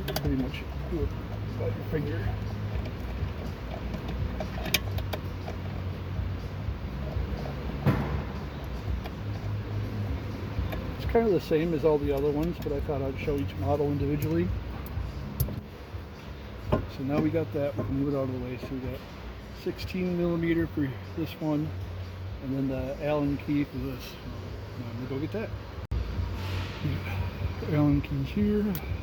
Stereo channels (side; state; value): both; identical; correlation 1.00